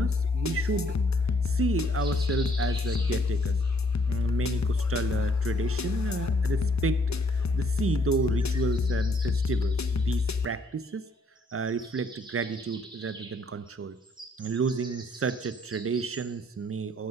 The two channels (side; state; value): both; normal; correlation 0.66